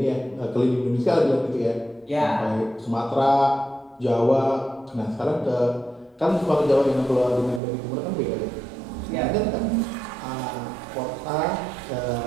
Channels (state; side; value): drops out; left; at 7.6 s